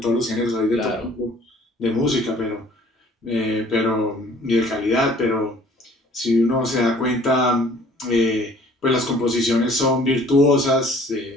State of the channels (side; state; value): both; normal; correlation 0.54